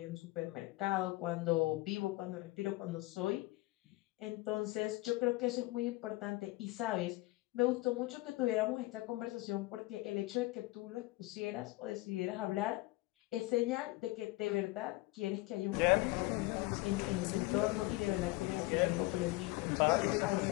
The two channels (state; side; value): quieter; right; 20.6 dB